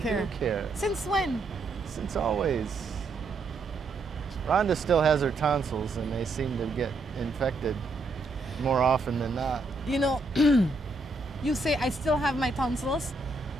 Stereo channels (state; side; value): quieter; left; 3.1 dB